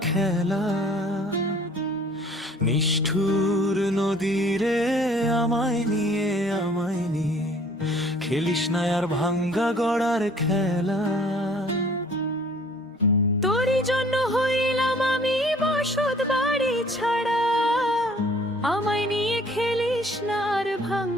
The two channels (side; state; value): both; normal; correlation 0.55